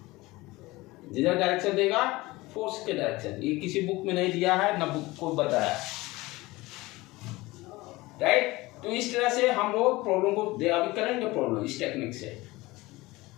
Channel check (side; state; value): right; quieter; 20.6 dB